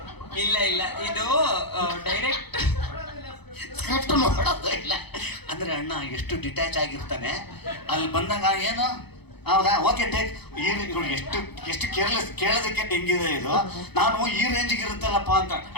ಇಲ್ಲ ಇದು ಡೈರೆಕ್ಟ್ ಸ್ಕ್ರಿಪ್ಟ್ ನೋಡೋದು ಇಲ್ಲ. ಅಂದ್ರೆ ಅಣ್ಣ ಎಷ್ಟು ಡಿಟ್ಯಾಚ್ ಆಗಿರ್ತಾನೆ, ಅಲ್ಲಿ ಬಂದಾಗ ಏನು ಹೌದಾ ಓಕೆ ಟೇಕ್ ಎಷ್ಟು ಕೇರ್ಲೆಸ್ ಕೇಳೋದಕ್ಕೆ ಹೆಂಗಿದೆ ಇದು, ನಾನು ಈ ರೇಂಜಿಗೆ ಇರುತ್ತಲ್ಲಪ್ಪ ಅಂತ.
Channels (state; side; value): late; right; 0.98 ms